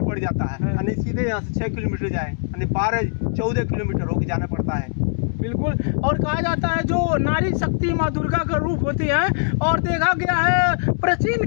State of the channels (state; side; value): silent; right; 63 dB below the other